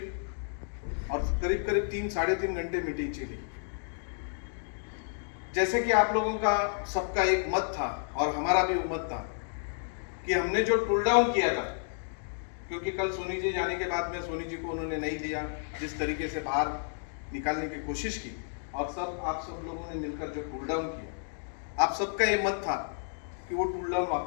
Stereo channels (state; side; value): silent; right; digital silence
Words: और करीब करीब 3-3.5 घंटे मीटिंग चली। जैसे कि आप लोगों का सबका एक मत था और हमारा भी मत था कि हमने जो टूल डाउन किया था, क्योंकि कल सोनी जी जाने के बाद में सोनी जी को उन्होंने नहीं दिया, जिस तरीके से बाहर निकालने की कोशिश की, और आप सब लोगों ने मिलकर जो टूल डाउन किया, आप सबका ये मत था कि वो टूल डाउन